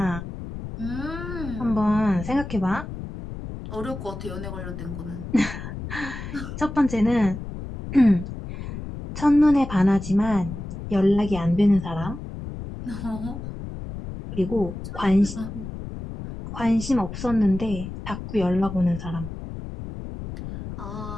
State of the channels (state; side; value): noise; left; rumble, 9 dB below the sound